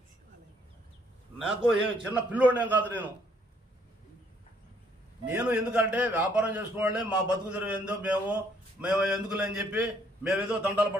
నాకు చిన్న పిల్లోడేం కాదు నేను ఎందుకంటే వ్యాపారం చేసుకోవాలే, మా బతుకు తెరువు ఏందో మేము ఎందుకులే అని చెప్పి మేమేదో దండాలు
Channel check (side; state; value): both; normal; correlation 0.67